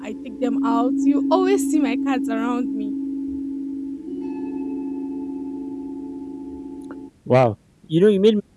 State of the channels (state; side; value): identical; both; correlation 1.00